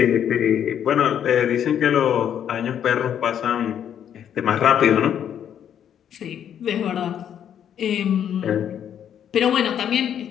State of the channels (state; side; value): quieter; right; 9.3 dB